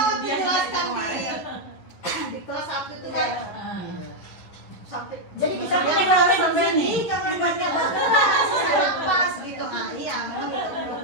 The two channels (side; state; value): right; late; 11 ms